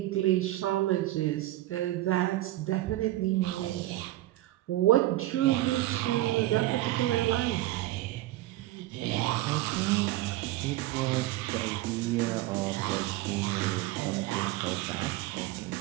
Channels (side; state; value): left; quieter; 16.3 dB